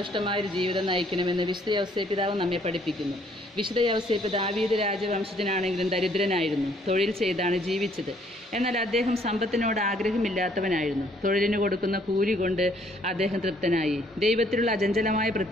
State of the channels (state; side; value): normal; both; correlation 0.64